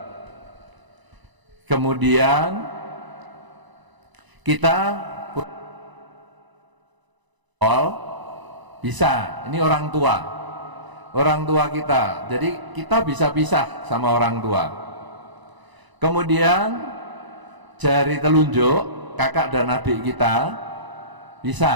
kemudian kita bisa, ini orang tua kita, jadi kita bisa pisah sama orang tua. Kemudian jari telunjuk kakak dan adik kita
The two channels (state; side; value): late; left; 1.0 ms